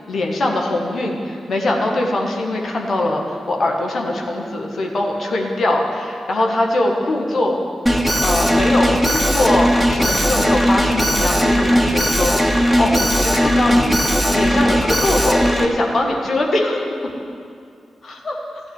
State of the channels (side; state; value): both; normal; correlation 0.93